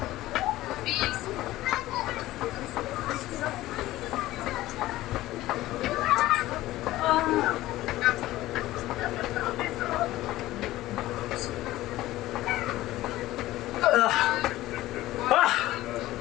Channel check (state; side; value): quieter; right; 16.3 dB